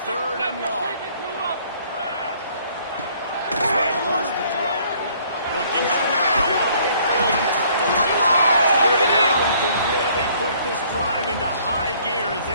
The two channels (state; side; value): inverted; both; correlation -0.60